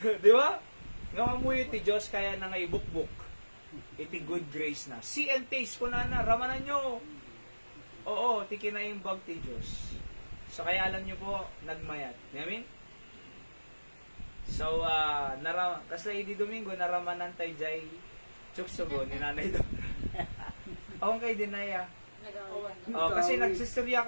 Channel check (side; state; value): both; inverted; correlation -1.00